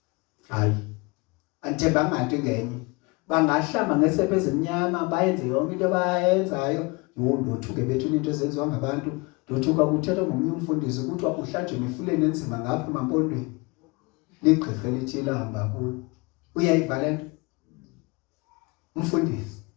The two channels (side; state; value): right; quieter; 26.8 dB